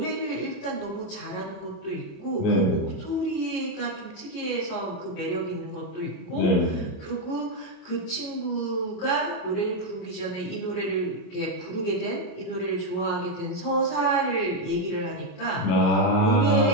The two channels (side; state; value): right; late; 28 ms